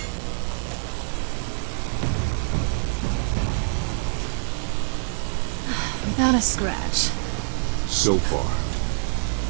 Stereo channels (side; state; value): left; silent; 62 dB below the other